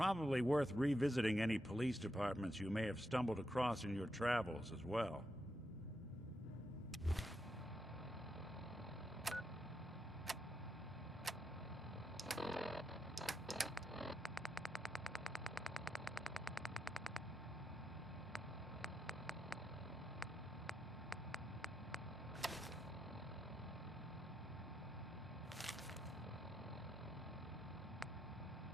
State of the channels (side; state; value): both; normal; correlation 0.83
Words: worth revisiting any police departments you may have stumbled across in your travels as well.